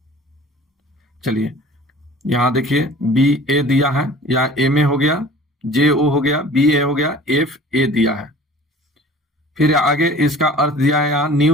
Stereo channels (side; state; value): both; normal; correlation 0.45